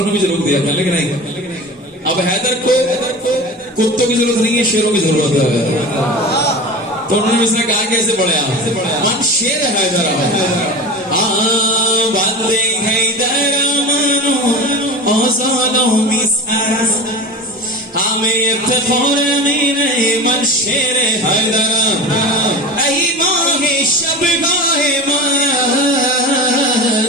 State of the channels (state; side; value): normal; both; correlation 0.31